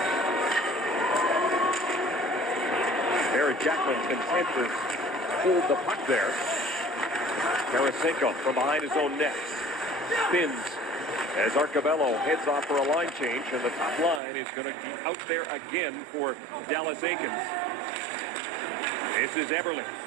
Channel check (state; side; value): drops out; left; at 14.2 s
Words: Eric Jackman content to hold the puck there. Tarasenko from behind his own net. Spins as Arcabello heads off for a line change, and the top line is going to be out there again for Dallas Eakins. This is Eberle